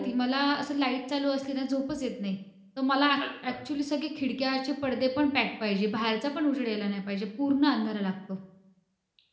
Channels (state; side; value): identical; both; correlation 1.00